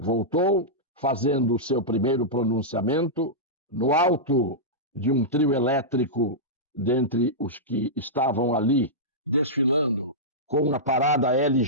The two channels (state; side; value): normal; both; correlation -0.12